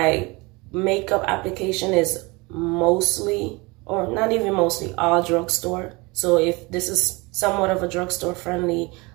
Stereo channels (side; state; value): left; quieter; 25.4 dB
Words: makeup application is mostly, or not even mostly, all drugstore. So if this is somewhat of a drugstore friendly